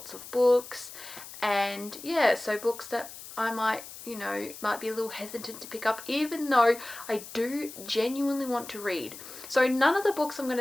of books. And yeah, so books that I might be a little hesitant to pick up, even though I do genuinely want to read. So none of the books I'm going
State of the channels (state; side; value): noise; left; hiss, 14 dB below the sound